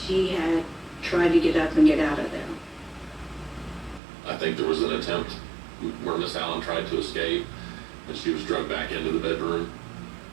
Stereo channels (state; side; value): drops out; left; at 4.0 s